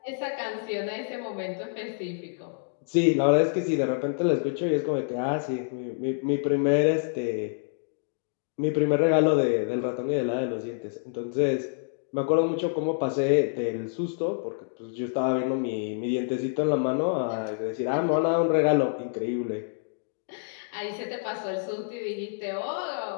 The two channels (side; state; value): right; silent; digital silence